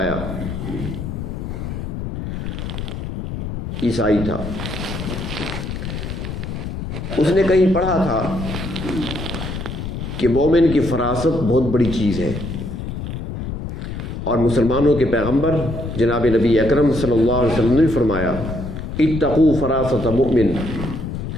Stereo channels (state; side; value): noise; left; rumble, 6 dB below the sound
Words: عیسائی تھا. اس نے کہیں پڑھا تھا کہ مومن کی فراست بہت بڑی چیز ہے، اور مسلمانوں کے پیغمبر جناب نبی اکرم صلی اللہ علیہ وسلم نے فرمایا اتقوا فراست مؤمن